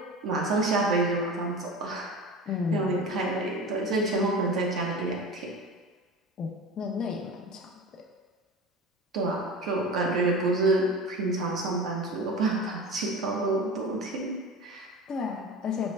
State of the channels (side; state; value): both; normal; correlation 0.32